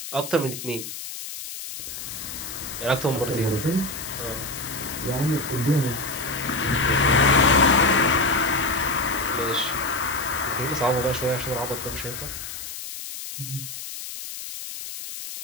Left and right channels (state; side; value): noise; left; hiss, 9 dB below the sound